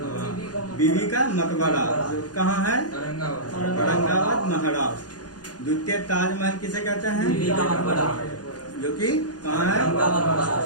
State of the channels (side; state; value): right; late; 0.69 ms